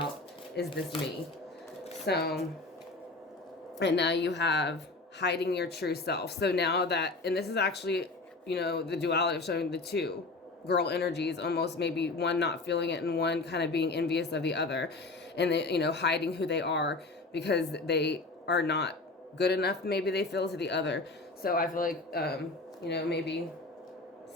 Is this me? So, and now you have hiding your true self. So now that, and this is actually, you know, the duality of showing the two girl energies, almost maybe one not feeling it and one kind of being envious of the other, and they, you know, hiding who they are because they are not good enough, maybe they feel, to the other. So I feel like, you know, maybe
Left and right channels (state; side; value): quieter; right; 3.3 dB